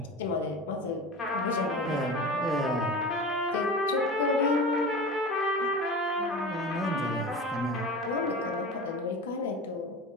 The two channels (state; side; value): normal; both; correlation 0.32